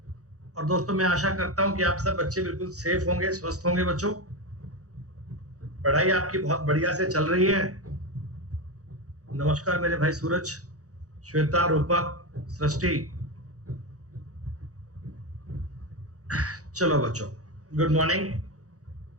और दोस्तों मैं आशा करता हूं कि आप सब बच्चे बिल्कुल सेफ होंगे, स्वस्थ होंगे। बच्चों पढ़ाई आपकी बहुत बढ़िया से चल रही है। नमस्कार मेरे भाई सूरज, श्वेता, रूपक, सृष्टि। चलो बच्चों, गुड मॉर्निंग।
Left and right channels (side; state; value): left; late; 0.66 ms